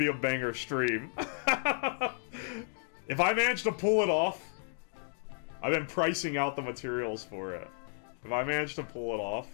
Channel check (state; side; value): silent; right; digital silence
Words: a banger stream. If I manage to pull it off, I've been pricing out the materials for it. If I manage to pull it